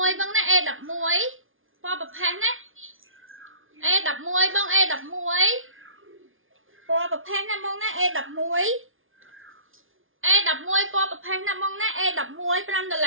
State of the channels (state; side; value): late; left; 0.59 ms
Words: E11 pò bập phán á E11 bông E11 pò bập phán á bông ná E11 E11 pò bập phán á bông ná E11